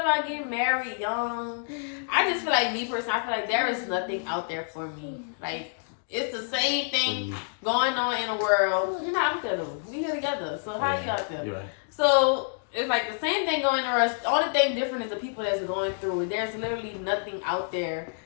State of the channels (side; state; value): right; silent; digital silence